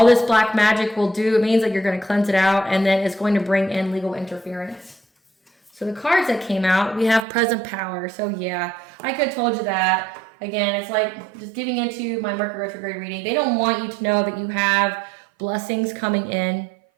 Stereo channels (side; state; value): left; drops out; at 7.2 s